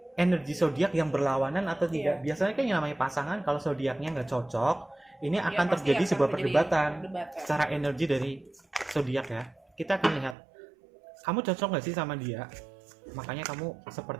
energi zodiak yang berlawanan atau tidak? Biasanya kan yang namanya pasangan, kalau zodiaknya nggak cocok, ini akan terjadi sebuah perdebatan secara energi dari zodiak ya. Kita akan lihat, kamu cocok nggak sih sama dia? Makanya kamu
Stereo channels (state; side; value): drops out; left; at 10.4 s